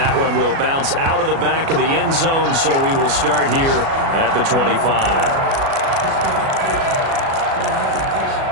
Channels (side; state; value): left; late; 37 ms